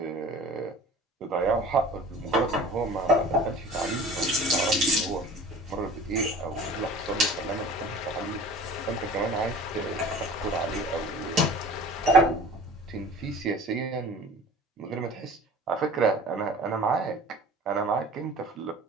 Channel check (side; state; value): both; normal; correlation 0.42